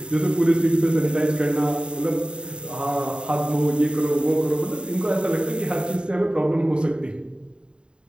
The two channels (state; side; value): late; left; 0.052 ms